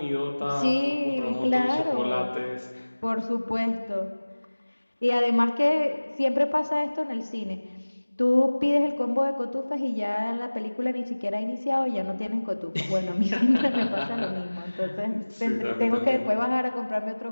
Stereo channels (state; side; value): inverted; both; correlation -1.00